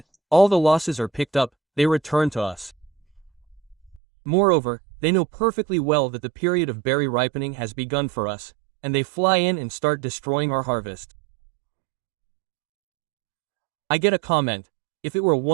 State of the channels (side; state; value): left; drops out; at 4.0 s